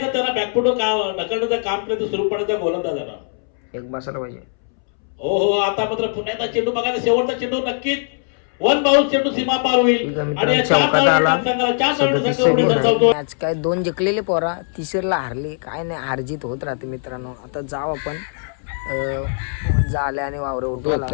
त्यांना बॅकफुट ढकलण्याचं काम केलं सुरू पडायचा गोलंदाजांना एक बसायला पाहिजे. हो हो, आता मात्र पुन्हा एकदा चेंडू बघायचा. शेवटचा चेंडू नक्कीच 1 बाउन्स चेंडू सीमा पार होईल आणि मॅच काय 2 जिंकलेले पोरा, तिसरीला हारली. काय नाही, हारजीत होत राहते मित्रांनो. आता जाऊ आपण झाले आणि वावरे उठवला.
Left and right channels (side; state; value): right; silent; 65 dB below the other